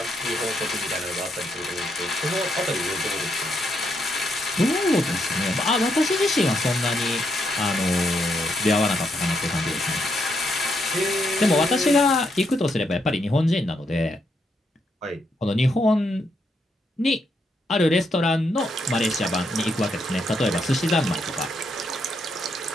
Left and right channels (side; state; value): both; normal; correlation 0.78